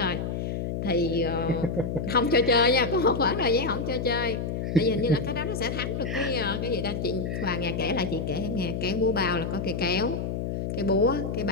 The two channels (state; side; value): noise; left; hum, 3 dB below the sound